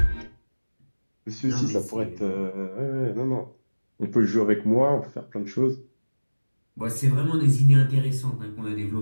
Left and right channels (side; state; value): both; inverted; correlation -1.00